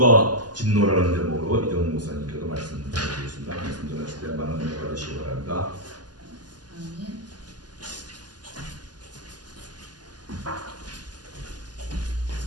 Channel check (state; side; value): late; left; 0.70 ms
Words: 진노라는 제목으로 이정 목사님께서 말씀 전해주셨습니다. 말씀 전하실 때 많은 은혜 받으시기 바랍니다. 아멘.